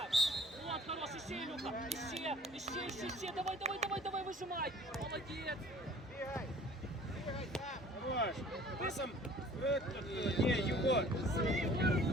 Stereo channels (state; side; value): normal; both; correlation 0.50